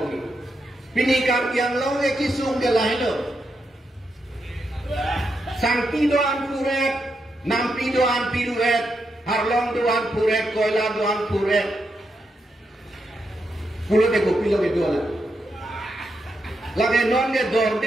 पिनी कार yang long के किसुम के लाइन लो सांपी दो आन पुरेट नाम्पी दो आन पिरुएट हरलोंग दो आन पुरेट कोयला दो आन पुरेट pulo de kopi lo que dola la que non de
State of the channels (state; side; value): normal; both; correlation 0.83